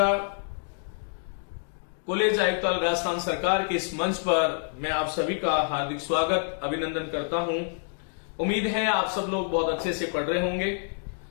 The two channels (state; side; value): silent; right; digital silence